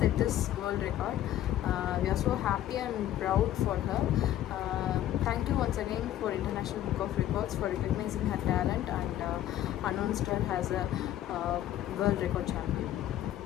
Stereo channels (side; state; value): right; quieter; 12.5 dB